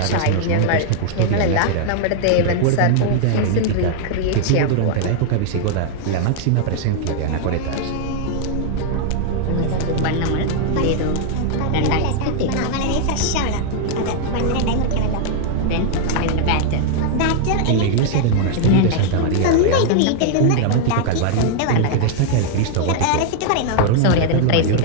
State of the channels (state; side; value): different; both; correlation 0.00